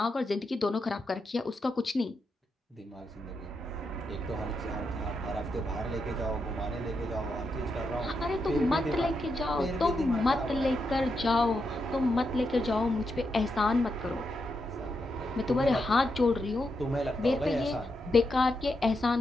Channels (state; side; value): normal; both; correlation 0.84